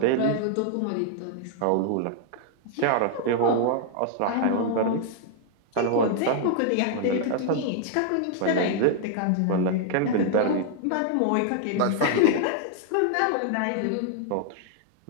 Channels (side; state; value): both; different; correlation 0.00